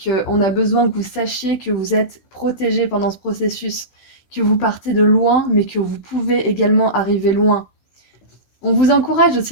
a besoin que vous sachiez que vous êtes protégé pendant ce processus, que vous partez de loin, mais que vous pouvez également arriver loin. On vous encourage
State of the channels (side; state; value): right; late; 15 ms